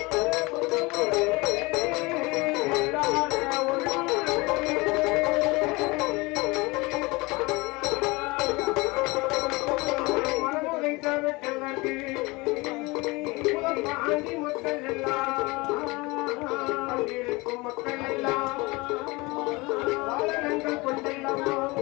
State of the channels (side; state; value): right; quieter; 24.2 dB